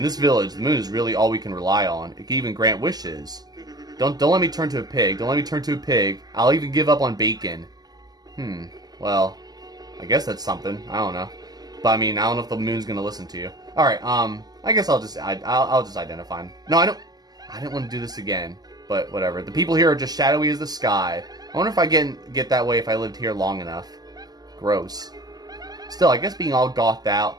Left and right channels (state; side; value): late; left; 0.19 ms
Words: this village, the moon is really all we can rely on. It can even grant wishes. Don't let me turn to a pig. Don't let me turn to a pig. I'll even give up on bacon. Well, I guess that's something. I don't know. But I mean, I don't know if the moon's gonna listen to you. All right. I guess I'll just identify him. No, I didn't want to do this again. But whatever. The people here are just shadowy as the sky. I wonder if I get that way if I lived here long enough. Gross. Still, I guess being all gothed out,